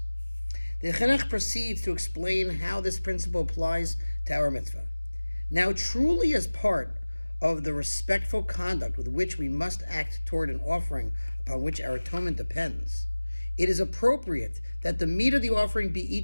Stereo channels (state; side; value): inverted; both; correlation -1.00